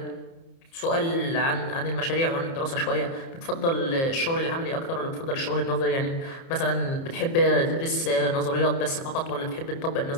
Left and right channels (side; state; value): right; late; 30 ms